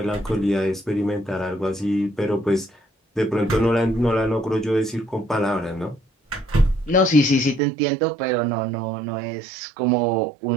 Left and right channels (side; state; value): left; drops out; at 7.6 s